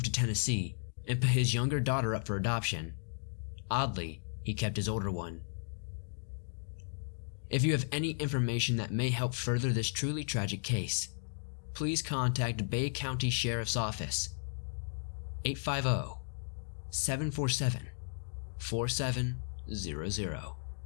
to Tennessee and put his younger daughter up for adoption. Oddly, he kept his older one. If you have any information that may help further this truly tragic case, please contact Bay County Sheriff's Office, 850-747-4700.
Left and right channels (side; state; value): right; silent; digital silence